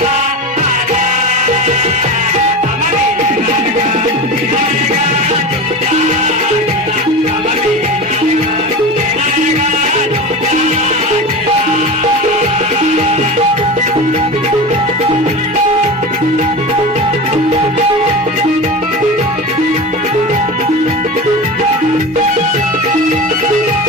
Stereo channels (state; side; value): normal; both; correlation 0.27